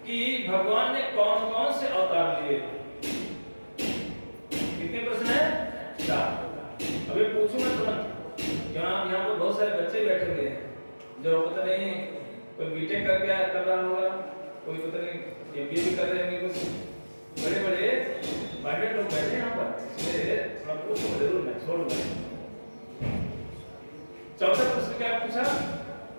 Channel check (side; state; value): both; inverted; correlation -1.00